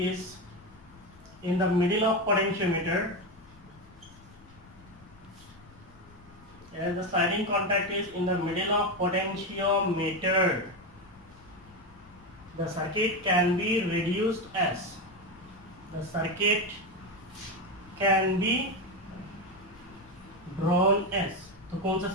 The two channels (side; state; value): left; noise; rumble, 24 dB below the sound